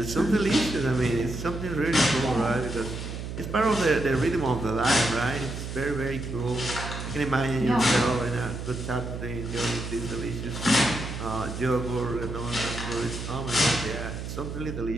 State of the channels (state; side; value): noise; right; hum, 7 dB below the sound